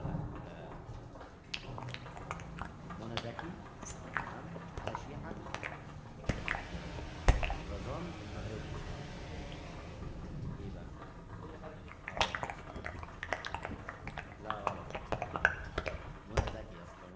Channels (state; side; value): identical; both; correlation 1.00